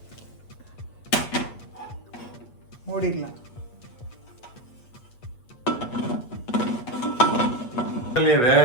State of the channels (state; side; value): late; right; 8.5 ms